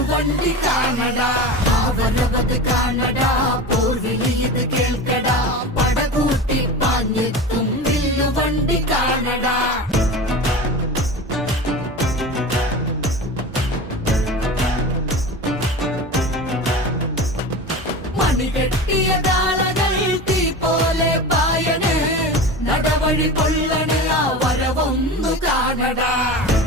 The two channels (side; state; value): both; normal; correlation 0.30